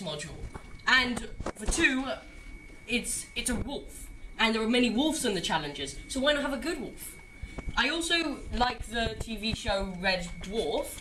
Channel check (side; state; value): both; identical; correlation 1.00